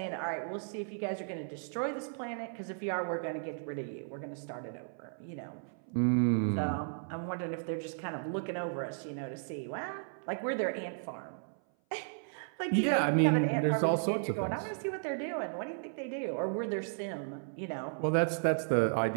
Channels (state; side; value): silent; left; 55 dB below the other